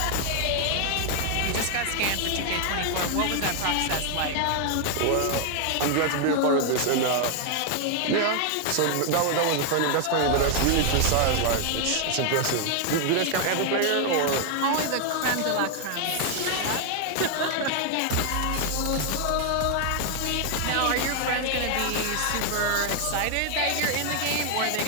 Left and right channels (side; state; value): both; different; correlation 0.00